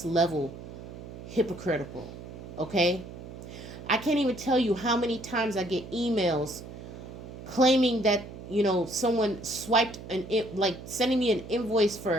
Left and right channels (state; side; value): noise; right; hum, 13 dB below the sound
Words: level hypocritical. Okay? I can't even tell you how many times I get emails claiming that, someone swiped like sending me an invoice